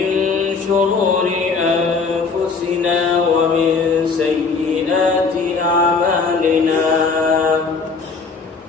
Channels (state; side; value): quieter; right; 4.8 dB